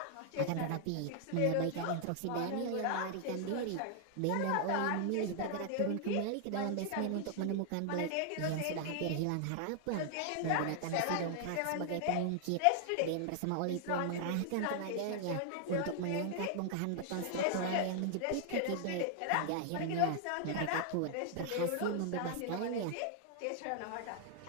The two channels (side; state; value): both; different; correlation 0.00